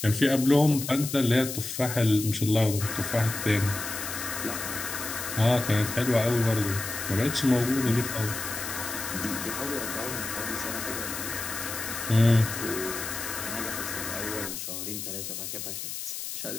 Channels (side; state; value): left; noise; hiss, 6 dB below the sound